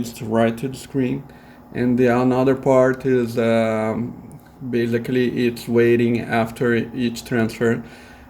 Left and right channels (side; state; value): both; identical; correlation 1.00